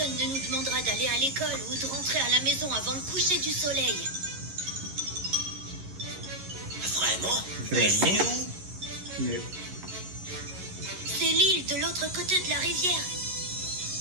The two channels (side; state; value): left; late; 11 ms